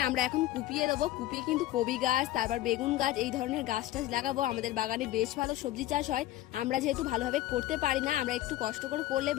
আমরা এখন কুপিয়ে দেবো। কুপিয়ে কিন্তু কবি গাছ, তারপর বেগুন গাছ, এই ধরনের গাছ টাছ লাগাবো। আমাদের বাগানে বেশ ভালো সবজি চাষ হয়। আমরা যেহেতু ভালোভাবে করতে পারি না, আমরা একটু কষ্ট করে করলে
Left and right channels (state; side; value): quieter; right; 15.1 dB